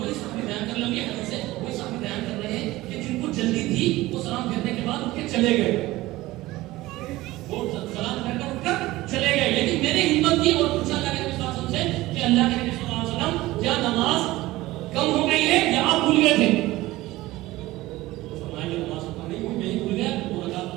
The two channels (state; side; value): quieter; left; 18.1 dB